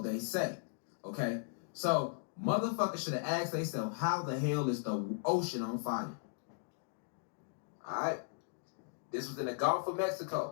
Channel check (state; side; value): silent; right; digital silence